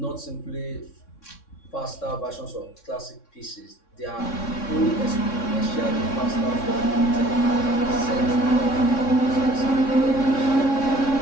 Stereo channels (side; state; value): right; late; 3.6 ms